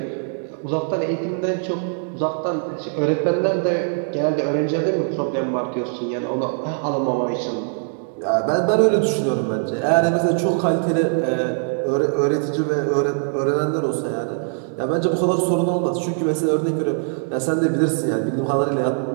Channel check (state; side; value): silent; left; 64 dB below the other